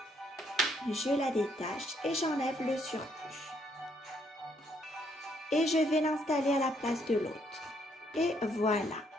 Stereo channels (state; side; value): normal; both; correlation 0.71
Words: Je la détache et j'enlève le surplus. Et je vais l'installer à la place de l'autre. Et voilà.